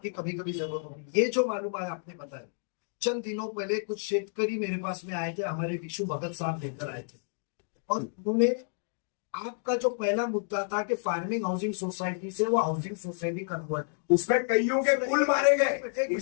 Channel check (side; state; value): right; silent; digital silence